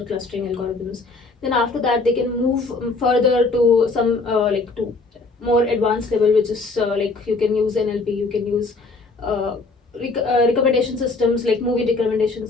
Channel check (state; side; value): quieter; right; 3.7 dB